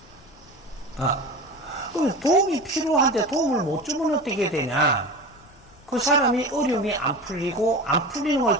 말이에요. 그럼 도움이 필요한데 도움을 못 주면 어떻게 되냐? 그 사람이 어려움이 안 풀리고, 안 풀리는 걸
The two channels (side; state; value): both; normal; correlation 0.30